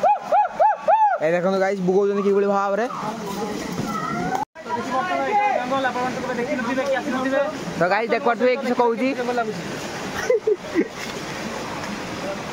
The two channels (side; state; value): both; identical; correlation 1.00